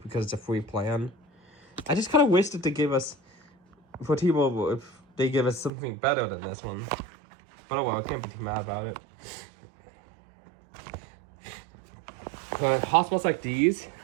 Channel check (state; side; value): drops out; left; at 5.7 s